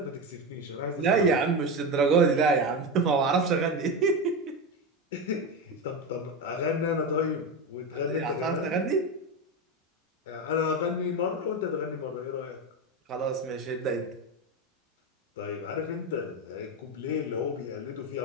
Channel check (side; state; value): both; normal; correlation 0.17